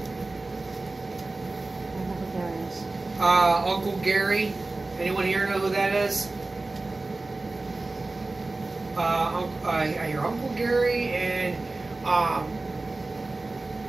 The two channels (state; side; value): quieter; left; 3.2 dB